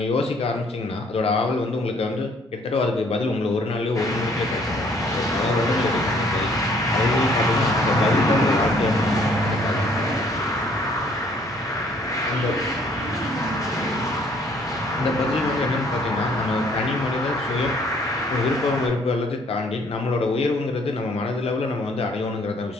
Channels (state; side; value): normal; both; correlation 0.61